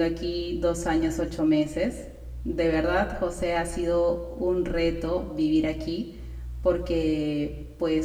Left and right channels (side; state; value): both; identical; correlation 1.00